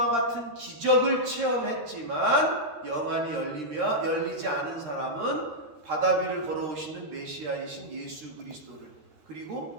같은 기적을 체험했지만 영안이 열리지 않은 사람은 바다 위를 걸어오시는 메시아이신 예수 그리스도를,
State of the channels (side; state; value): left; late; 13 ms